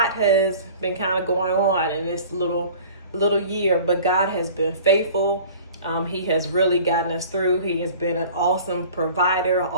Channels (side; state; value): both; inverted; correlation -0.45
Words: has been kind of going on in this little year, but God has been faithful. He has really gotten us through. He has been an awesome provider,